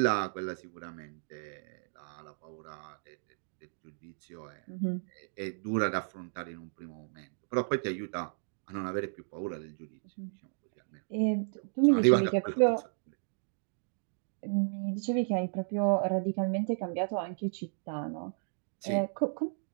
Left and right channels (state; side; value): silent; left; digital silence